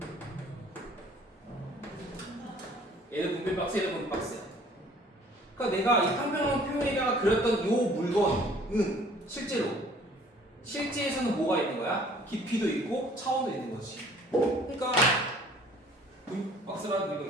얘는 분필 박스, 얘는 분필 박스야. 그러니까 내가 이 평평한 표면에다가 그렸던 이 물건은 실제에서는 뭐가 있는 거야? 깊이도 있고 차원도 있는 거지. 그러니까 분필 박스라는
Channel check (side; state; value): both; normal; correlation 0.55